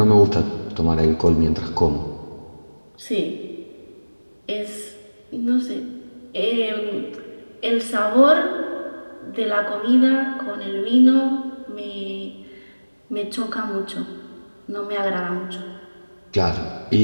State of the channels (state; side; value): inverted; both; correlation -1.00